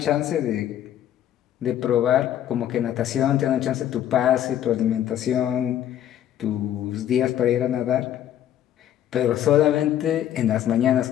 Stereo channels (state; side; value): quieter; right; 11.2 dB